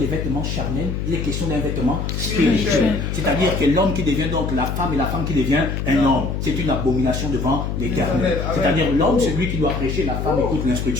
vêtements charnels, il est question d'un vêtement spirituel. C'est-à-dire que l'homme qui devient donc la femme et la femme qui devient un homme, c'est une abomination devant l'Éternel. C'est-à-dire l'homme, c'est lui qui doit prêcher, la femme écoute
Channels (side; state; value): left; noise; hum, 3 dB below the sound